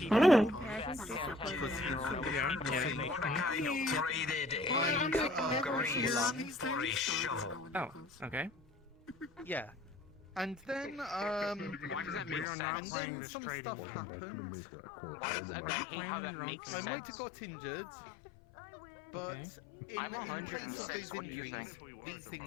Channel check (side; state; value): right; drops out; at 12.5 s